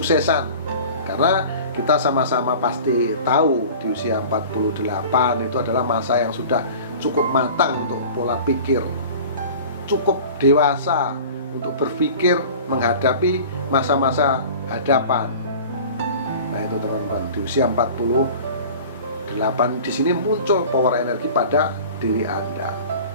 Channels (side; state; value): both; inverted; correlation -0.41